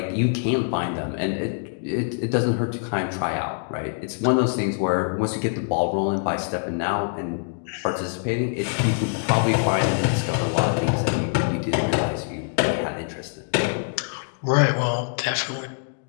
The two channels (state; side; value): silent; right; digital silence